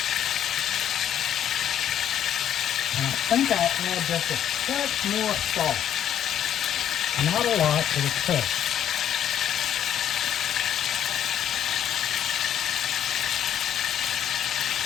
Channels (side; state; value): right; quieter; 10.1 dB